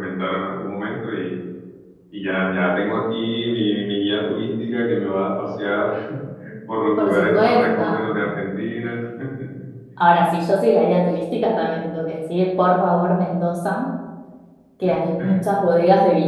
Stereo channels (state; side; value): identical; both; correlation 1.00